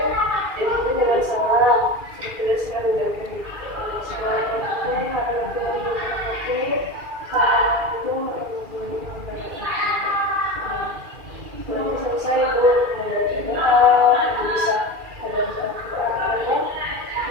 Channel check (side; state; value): left; late; 2.4 ms